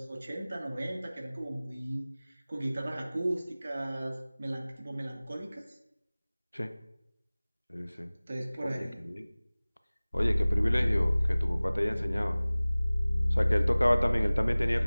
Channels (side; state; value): both; inverted; correlation -0.99